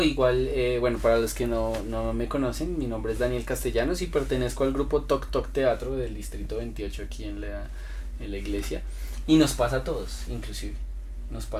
igual, bueno, para los que no me conocen, mi nombre es Daniel Castellanos y pertenezco al grupo Toc Toc Teatro del Distrito 28 aquí en la iglesia. Y nos pasa a todos, inclusive, nos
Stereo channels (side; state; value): both; identical; correlation 1.00